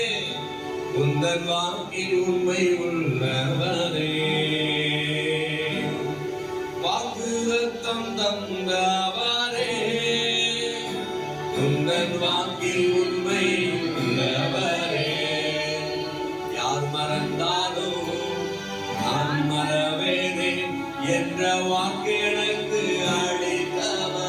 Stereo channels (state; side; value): identical; both; correlation 1.00